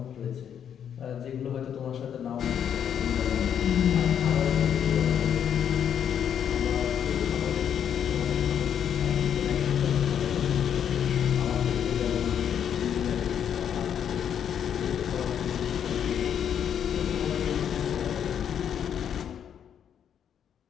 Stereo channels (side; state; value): right; quieter; 8.8 dB